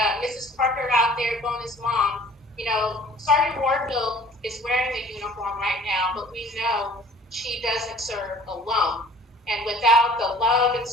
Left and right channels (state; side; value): normal; both; correlation 0.50